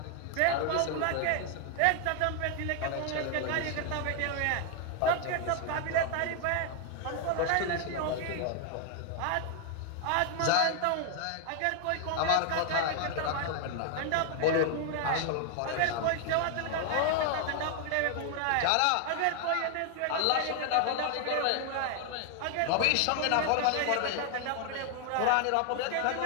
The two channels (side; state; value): both; different; correlation 0.00